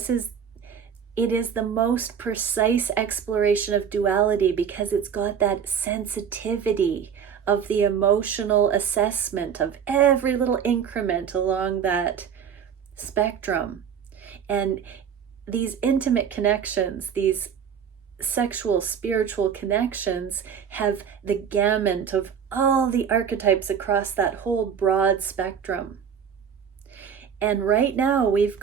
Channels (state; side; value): quieter; left; 7.5 dB